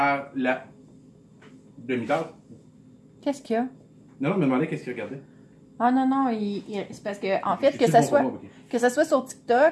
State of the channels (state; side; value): identical; both; correlation 1.00